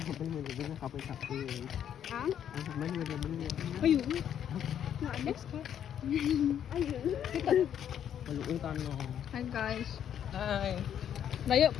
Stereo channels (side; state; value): right; quieter; 9.5 dB